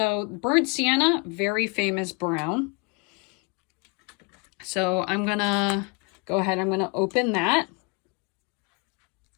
burnt sienna, very famous brown. So I'm going to go ahead. I'm going to open that.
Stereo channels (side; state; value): right; quieter; 31.6 dB